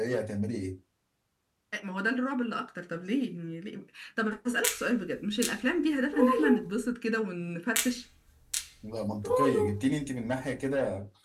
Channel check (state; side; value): identical; both; correlation 1.00